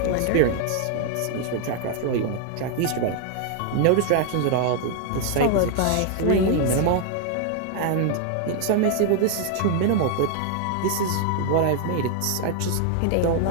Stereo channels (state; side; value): different; both; correlation 0.00